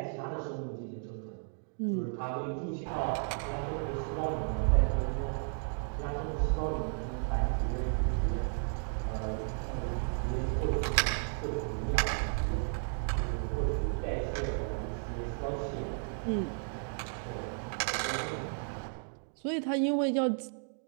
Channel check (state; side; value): silent; left; 55 dB below the other